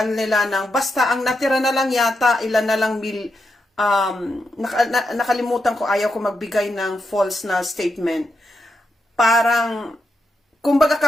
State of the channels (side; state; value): both; normal; correlation 0.84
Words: nila ng, basta ang natira na lang yata, ilan na lang nakalimutan ko, ayaw ko magbigay ng false na statement. Parang, kumbaga